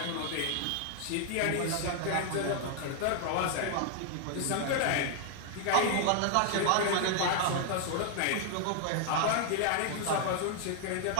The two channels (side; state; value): both; different; correlation 0.00